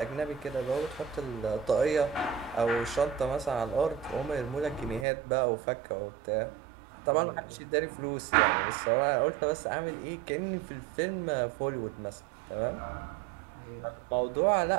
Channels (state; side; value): drops out; left; at 5.1 s